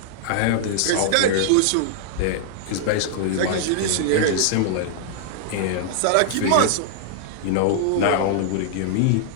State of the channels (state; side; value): different; both; correlation -0.01